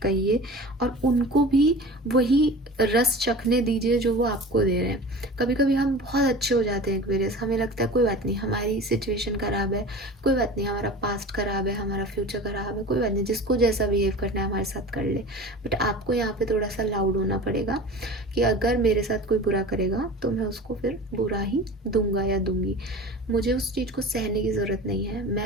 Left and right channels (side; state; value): both; normal; correlation 0.37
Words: कहिए और उनको भी वही रस चखने दीजिए जो वो आपको दे रहे हैं। कभी कभी हम बहुत अच्छे हो जाते हैं एक्वेरियस, हमें लगता है कोई बात नहीं, हमारी सिचुएशन ख़राब है, कोई बात नहीं, हमारा पास्ट ख़राब है, हमारा फ्यूचर ख़राब है, कोई बात नहीं, जिसको जैसा बिहेव करना है हमारे साथ कर ले। बट आपको यहाँ पे थोड़ा सा लाउड होना पड़ेगा कि अगर मेरे साथ कोई बुरा करेगा तो मैं उसको फिर बुरा ही दूंगा या दूंगी। मुझे उस चीज़ को सहने की ज़रूरत नहीं है।